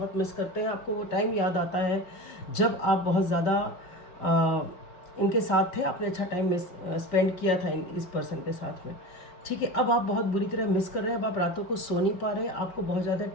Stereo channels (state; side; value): late; right; 5.5 ms